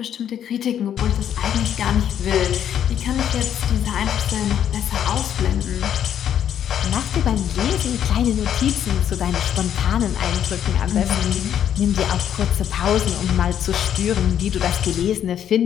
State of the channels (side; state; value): right; quieter; 9.7 dB